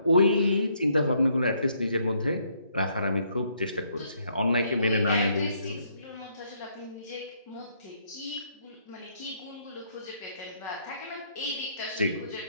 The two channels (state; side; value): inverted; both; correlation -0.70